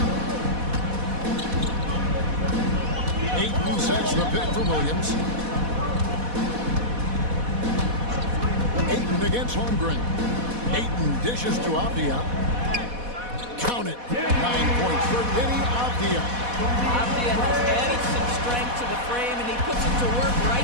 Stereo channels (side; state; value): left; late; 4.1 ms